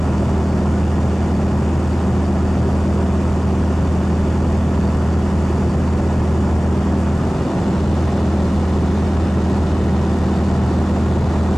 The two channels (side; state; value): both; normal; correlation 0.98